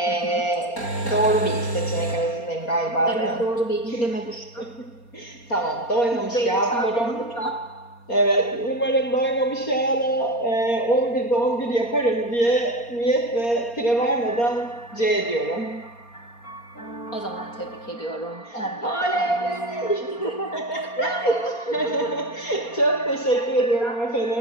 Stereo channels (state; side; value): late; right; 4.3 ms